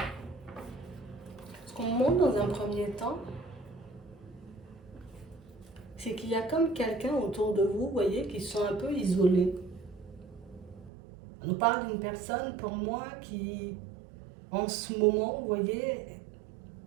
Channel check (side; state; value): left; drops out; at 10.9 s